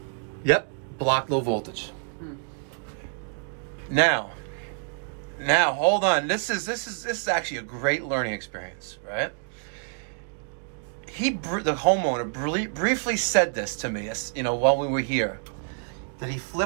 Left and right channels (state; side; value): silent; left; 60 dB below the other